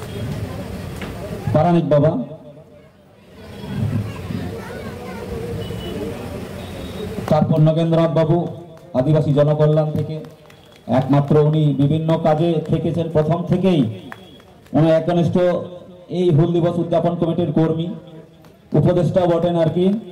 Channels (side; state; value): both; identical; correlation 1.00